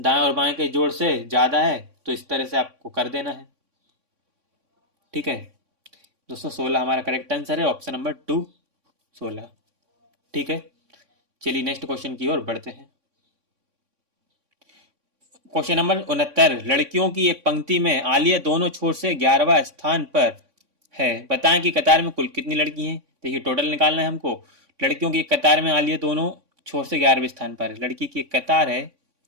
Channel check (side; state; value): left; late; 3.6 ms